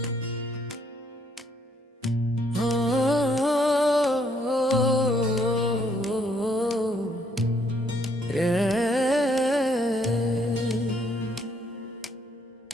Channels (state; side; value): normal; both; correlation 0.69